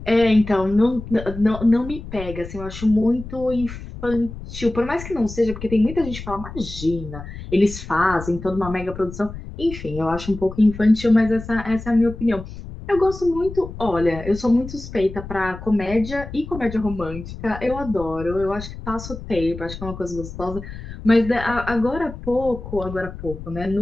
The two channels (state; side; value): noise; left; rumble, 11 dB below the sound